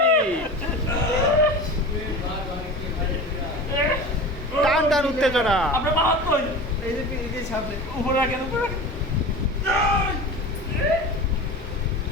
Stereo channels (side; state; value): both; normal; correlation 0.33